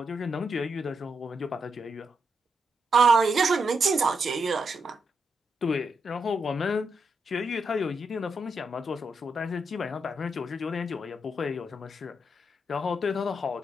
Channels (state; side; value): normal; both; correlation 0.82